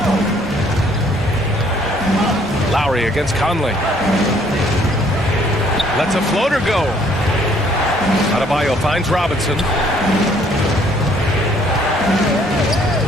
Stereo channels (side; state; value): both; normal; correlation 0.62